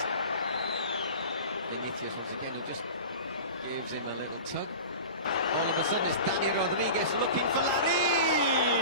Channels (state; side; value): inverted; both; correlation -0.35